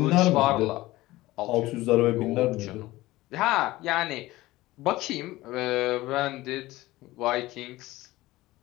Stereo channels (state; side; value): quieter; right; 18.2 dB